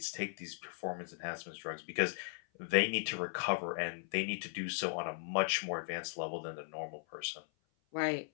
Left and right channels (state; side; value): silent; right; 52 dB below the other